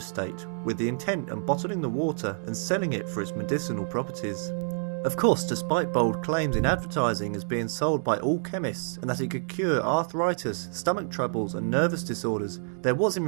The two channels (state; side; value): silent; left; digital silence